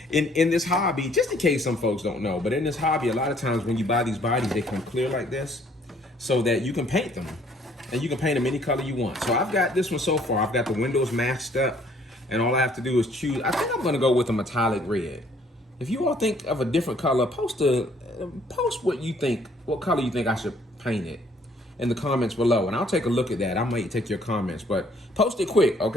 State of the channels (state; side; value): normal; both; correlation 0.62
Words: In this hobby, just in case some folks don't know, but in this hobby, a lot of times when you buy these bodies, they come clear like this so that you can paint them. And you can paint them any color you want. So I've got this one so far. I've got the windows masked up, and all I have to do is choose. I think I'm gonna go with a metallic red. If you all think of a different color, post what you think, what color you think I should paint it in the comments below, and I'll take a look at that. I might take your comments, but post it quick,